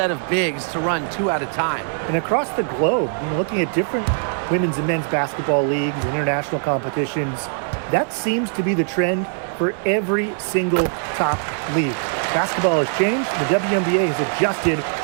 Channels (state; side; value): silent; left; 65 dB below the other